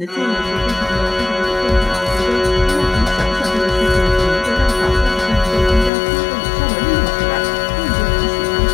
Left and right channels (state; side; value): drops out; right; at 5.9 s